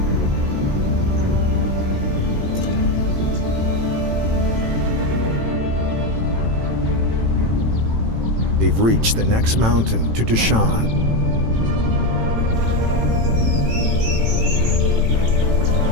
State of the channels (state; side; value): late; left; 18 ms